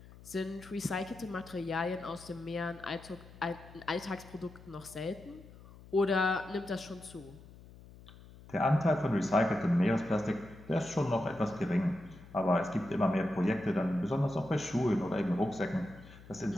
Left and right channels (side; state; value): left; noise; hum, 20 dB below the sound